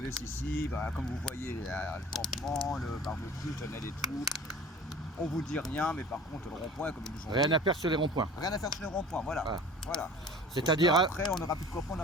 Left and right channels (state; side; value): normal; both; correlation 0.43